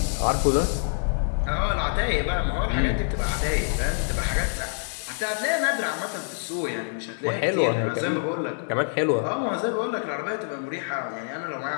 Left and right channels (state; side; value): silent; right; 61 dB below the other